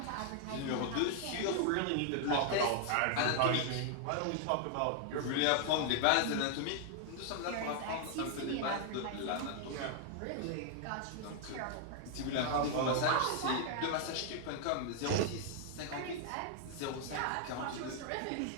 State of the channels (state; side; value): different; both; correlation 0.00